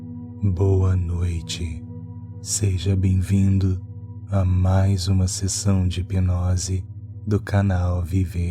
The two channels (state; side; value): identical; both; correlation 1.00